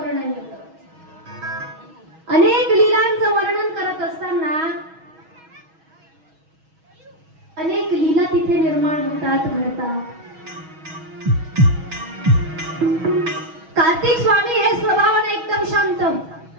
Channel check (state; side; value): late; left; 6.3 ms